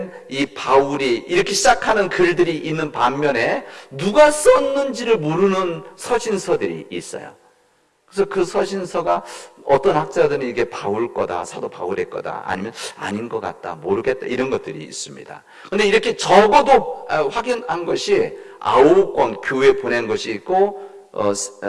이 바울이 이렇게 시작하는 글들이 있는 반면에 누가 썼는지를 모르는 서신서들이 있어요. 그래서 그 서신서가 어떤 학자들은 이게 바울 거다, 사도 바울의 거다, 아니면 아닌 것 같다, 모르겠다, 이런 것들이 있습니다. 근데 이렇게 적어도 확인한 것이 9권 교회에 보낸 것이 있고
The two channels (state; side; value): identical; both; correlation 1.00